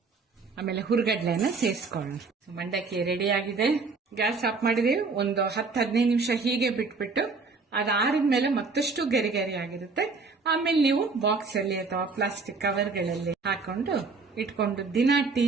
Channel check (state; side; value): quieter; left; 4.3 dB